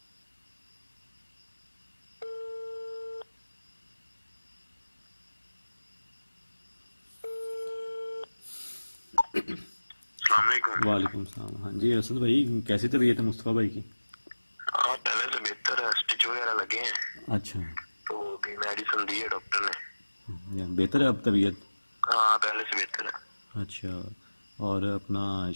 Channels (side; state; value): both; inverted; correlation -1.00